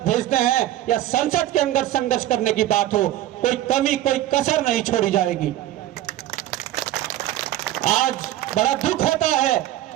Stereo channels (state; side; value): quieter; left; 13.9 dB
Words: भेजते हैं या संसद के अंदर संघर्ष करने की बात हो, कोई कमी, कोई कसर नहीं छोड़ी जाएगी। आज बड़ा दुख होता है